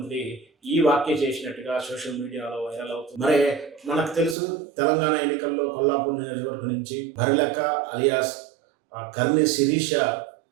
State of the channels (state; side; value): drops out; left; at 4.4 s